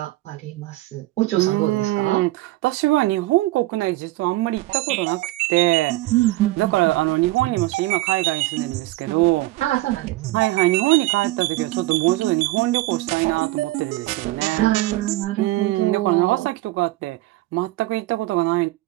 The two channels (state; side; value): quieter; left; 18.6 dB